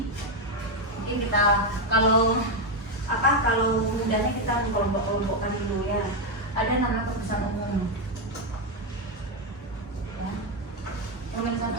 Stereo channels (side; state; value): both; normal; correlation 0.05